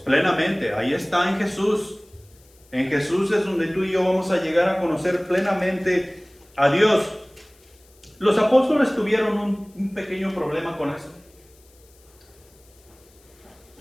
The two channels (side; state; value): left; noise; hiss, 30 dB below the sound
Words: Ahí está en Jesús. En Jesús es donde tú y yo vamos a llegar a conocer plenamente a Dios. Los apóstoles tuvieron un pequeño problema con eso.